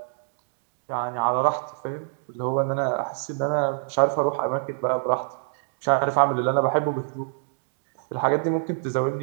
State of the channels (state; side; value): silent; left; digital silence